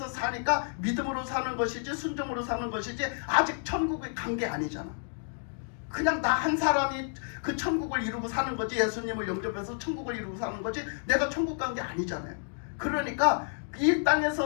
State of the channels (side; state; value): right; silent; digital silence